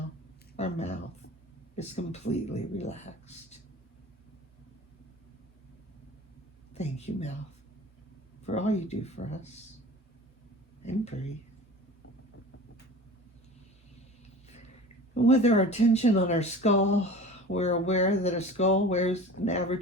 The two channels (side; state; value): both; normal; correlation 0.38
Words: our mouth is completely relaxed. Thank you, mouth, for all you do for us. And breathe. And with our attention on our skull, we're aware that a skull weighs an